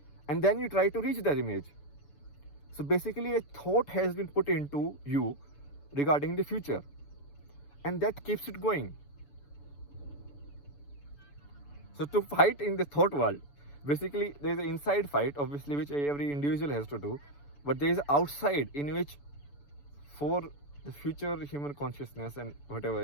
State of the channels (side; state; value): right; late; 6.9 ms